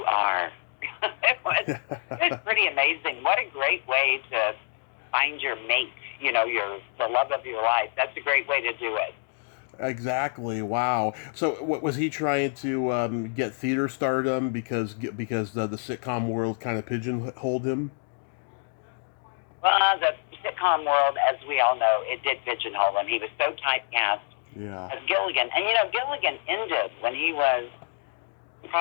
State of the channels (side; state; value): right; silent; digital silence